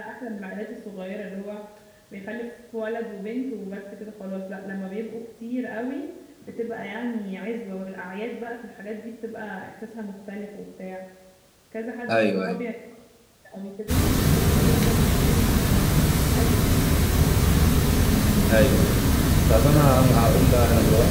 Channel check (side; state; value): both; identical; correlation 1.00